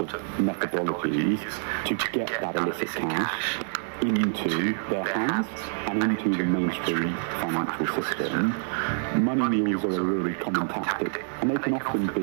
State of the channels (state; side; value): silent; left; digital silence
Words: methodologies to get that illicit cash into their hands and into the mainstream financial system. Money mules are a really common tactic, and they can often